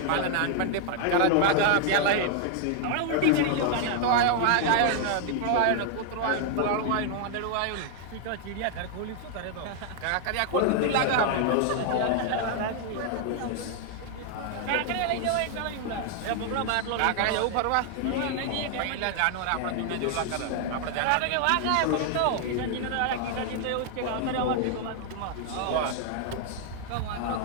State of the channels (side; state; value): both; different; correlation 0.00